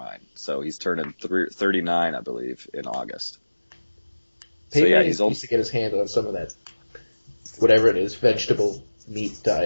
So he's turning 39, I believe, in August. Peyton Manning needs to get his hand on some of that, whatever it is, vegetable meat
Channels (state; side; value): inverted; both; correlation -1.00